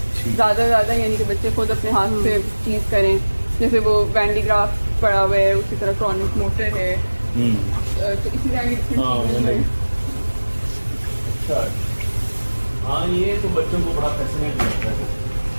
ज़्यादा यानी कि बच्चे खुद अपने हाथ से चीज़ करें। जैसे वो वैंडी ग्राफ पड़ा हुआ है, उसी तरह क्रॉनिक मोटर है, तो इसी तरह की हाँ, ये तो बच्चों को बड़ा फैसिनेट लगता है।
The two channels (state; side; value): inverted; both; correlation -1.00